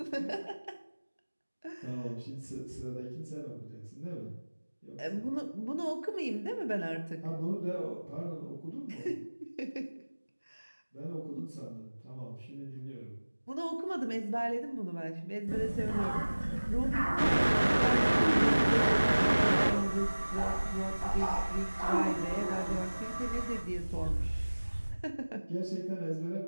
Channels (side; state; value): both; inverted; correlation -1.00